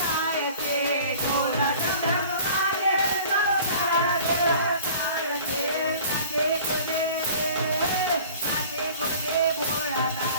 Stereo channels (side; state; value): both; inverted; correlation -0.46